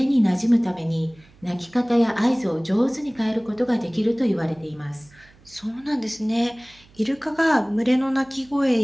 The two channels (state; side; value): noise; right; hum, 27 dB below the sound